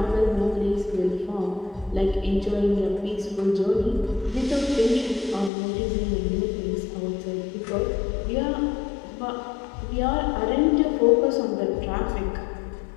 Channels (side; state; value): right; drops out; at 5.5 s